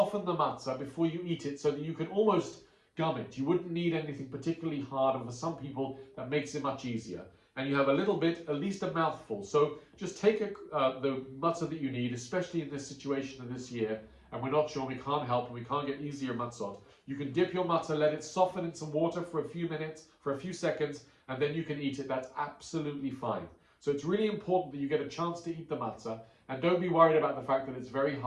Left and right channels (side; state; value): both; identical; correlation 1.00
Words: the matzah before you eat it so that you can almost gum it. You wouldn't need anything particularly hard, and for some people that makes it much easier. and you have a little bit, at least a mouthful. So just take the matzah that you need, especially in this situation of this year, and we're not sure, we can't help, and we can't get easier matzot. You can dip your matzah, let it soften in some water for a few minutes, for a few seconds, and then you can eat it. That's absolutely fine. So it's really important that you get a chance to eat the matzah, and don't be worried about the fact that it's very